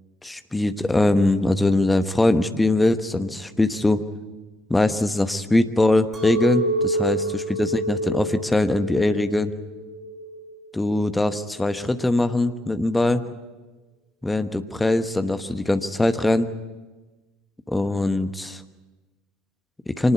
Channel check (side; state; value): both; normal; correlation 0.83